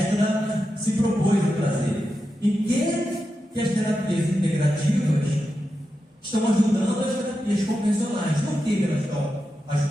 se propôs a trazer. Em que as terapias integrativas estão ajudando as terapias convencionais? Por que elas estão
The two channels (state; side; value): normal; both; correlation 0.89